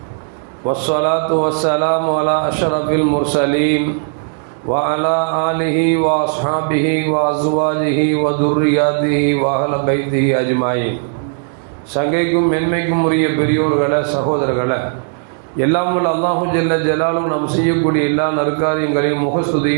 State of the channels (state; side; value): silent; left; 69 dB below the other